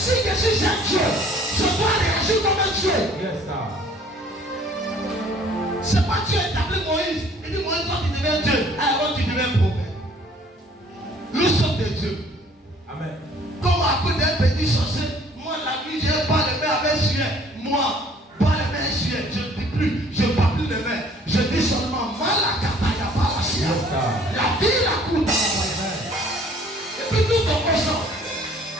je suis un Dieu, je dois réagir comme un Dieu. Yes, c'est pas Dieu établi Moïse. Il dit Moïse, toi tu deviens Dieu. Alors tu deviens prophète. Nous sommes des dieux. Amen. Comme à côté d'un petit sorcier, moi la nuit je pas les mains avec suet. Moi, pas les mains suet. Je ne dis plus, je ne parle plus les mains. Je dis seulement Malakataya Palacia. La vie la coûte. Et puis tout en consent.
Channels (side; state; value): both; normal; correlation 0.56